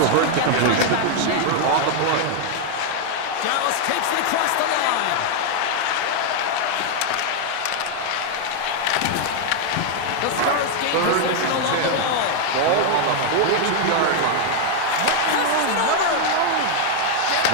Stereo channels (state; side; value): different; both; correlation 0.00